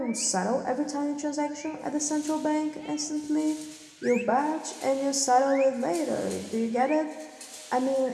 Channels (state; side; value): identical; both; correlation 1.00